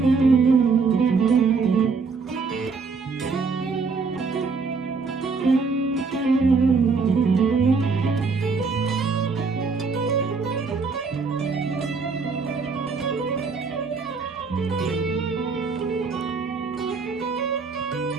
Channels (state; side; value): quieter; left; 4.7 dB